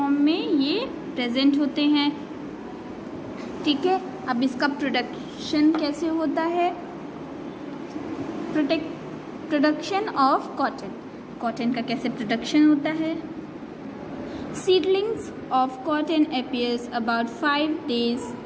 में ये प्रेजेंट होते हैं, ठीक है. अब इसका प्रोडक्शन कैसे होता है? Production of cotton. कॉटन का कैसे प्रोडक्शन होता है? Seedlings of cotton appears about 5 days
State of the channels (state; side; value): identical; both; correlation 1.00